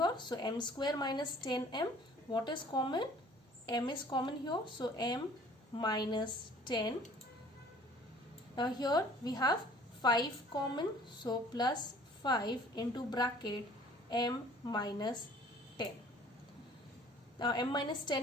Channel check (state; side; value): normal; both; correlation 0.52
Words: So m square minus 10m, what is common? M is common here, so m minus 10. Now here we have 5 common, so plus 5 into bracket m minus 10. Now m minus